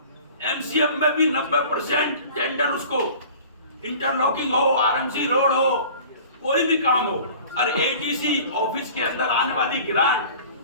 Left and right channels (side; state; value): both; inverted; correlation -0.44